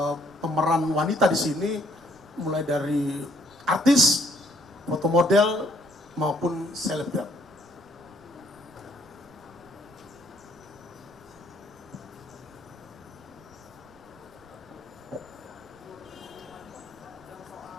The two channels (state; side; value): noise; right; rumble, 27 dB below the sound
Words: pemeran wanita di sini mulai dari artis, foto model maupun selebgram.